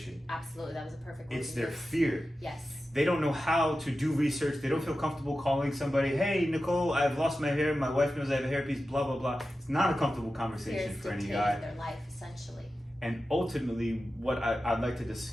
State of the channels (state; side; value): normal; both; correlation 0.93